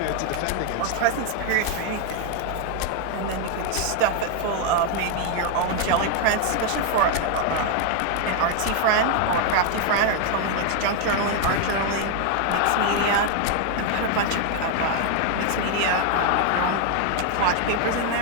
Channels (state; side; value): different; both; correlation 0.01